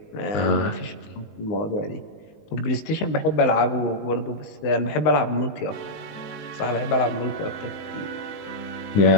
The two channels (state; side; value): late; right; 19 ms